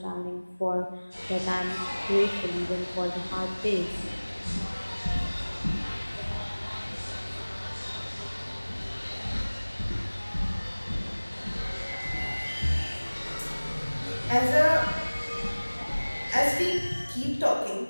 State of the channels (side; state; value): both; inverted; correlation -1.00